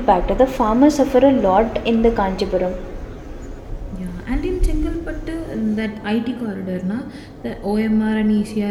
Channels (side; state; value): both; identical; correlation 1.00